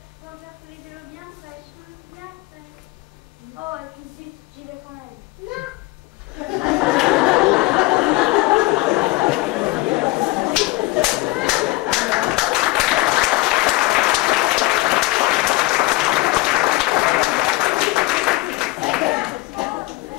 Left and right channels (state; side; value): quieter; right; 21.3 dB